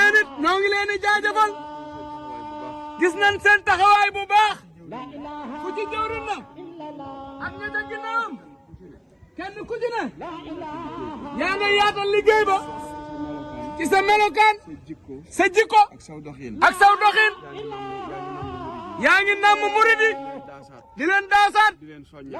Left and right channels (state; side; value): identical; both; correlation 1.00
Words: it ñoo ngi leen di jaajëfal. gis nañ seen taxawaay bu baax. ku ci jëwriñ na. ak ña ca ginnaawam. kenn ku ci ne. yaa nga yaatal liggéey ba. ci sa melokaan. sa jikko. ak saw doxin. ak saw doxin. yaa ngi namm murid yi. di leen daasaat. di